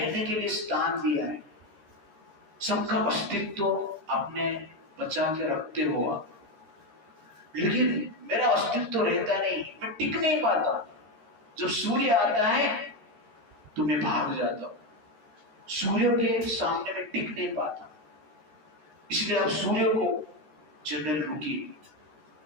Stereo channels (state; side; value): late; left; 13 ms